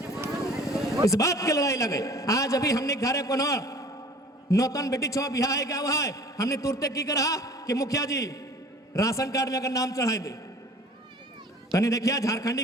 इस बात के लड़ाई लगे। आज अभी हमने घरे को नौतन बेटी छो बिहार है क्या हुआ है, हमने तुरते की करा कि मुखिया जी राशन कार्ड में अगर नाम चढ़ाई दे, तनी देखिया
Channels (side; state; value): both; normal; correlation 0.47